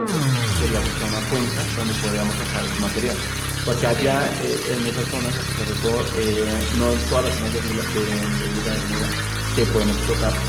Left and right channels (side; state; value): both; identical; correlation 1.00